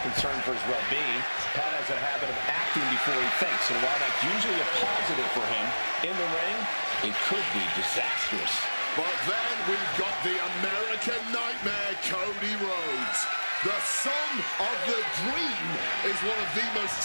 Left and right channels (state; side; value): inverted; both; correlation -1.00